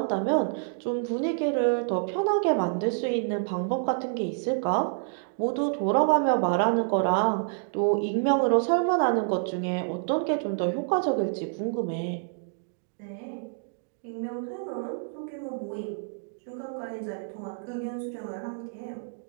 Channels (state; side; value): silent; left; digital silence